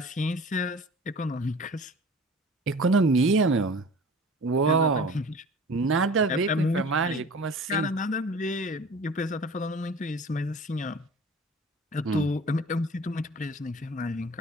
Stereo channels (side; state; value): both; normal; correlation 0.42